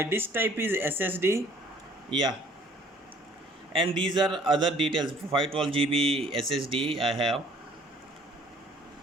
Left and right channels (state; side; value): normal; both; correlation 0.56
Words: disk type is SSD. Yeah, and these are other details. 512 GB SSD I have.